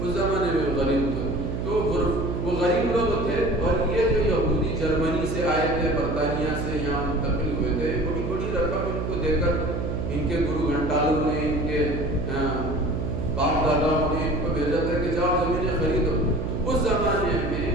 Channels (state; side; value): noise; right; hum, 3 dB below the sound